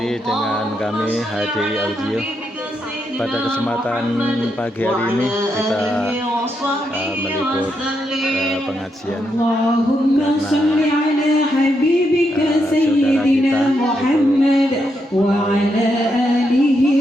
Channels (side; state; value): both; normal; correlation 0.81